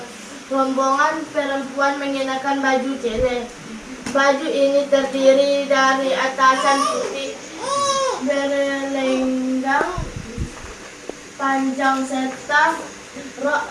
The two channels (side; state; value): both; identical; correlation 1.00